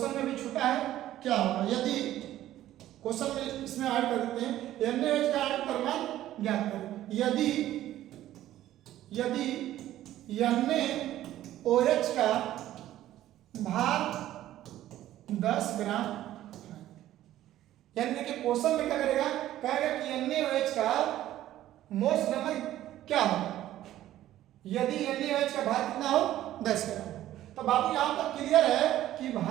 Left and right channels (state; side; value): quieter; left; 13.5 dB